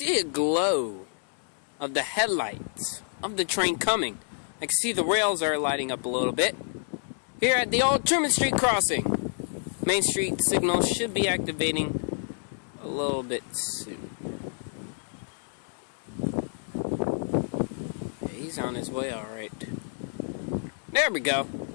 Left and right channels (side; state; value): right; silent; digital silence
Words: a glow of the headlights of the train coming. I can see the rails are lighting up a little bit. Here at the old Truman Street crossing. Main Street signal should be activating a little bit soon. Yeah, he's on his way, alright. There we go.